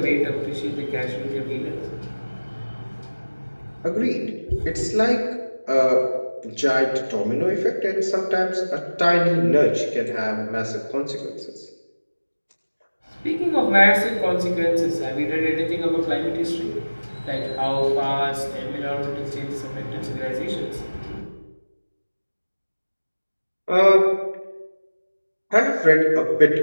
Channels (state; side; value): inverted; both; correlation -1.00